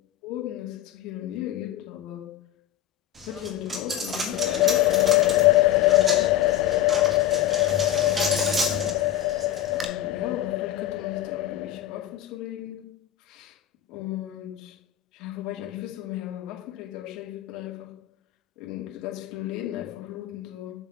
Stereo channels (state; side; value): quieter; right; 12.0 dB